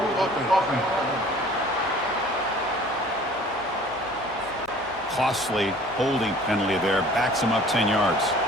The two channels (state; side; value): noise; left; hum, 26 dB below the sound